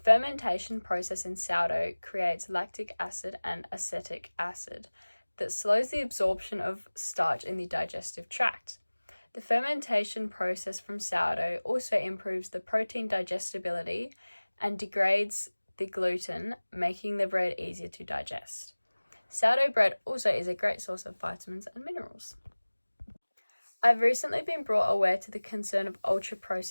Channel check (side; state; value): both; inverted; correlation -1.00